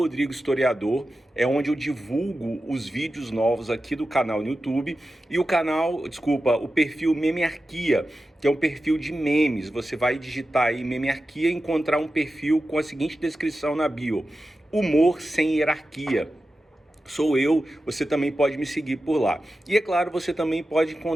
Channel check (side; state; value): both; normal; correlation 0.92